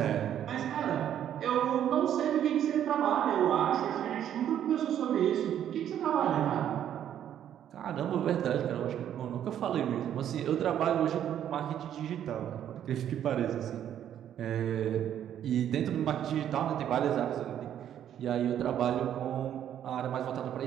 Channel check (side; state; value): left; quieter; 10.3 dB